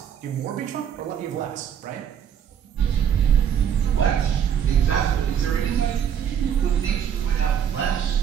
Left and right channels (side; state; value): left; quieter; 8.6 dB